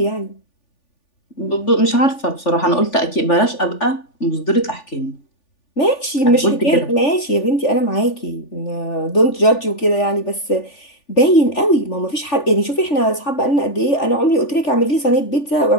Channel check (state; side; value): late; right; 3.4 ms